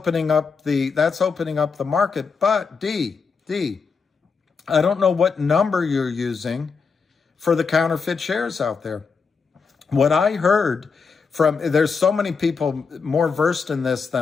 up the market. But D, I don't know what number you're using for the counterfeit shares out there. What I heard there's so many people more versed in this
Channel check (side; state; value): right; quieter; 5.3 dB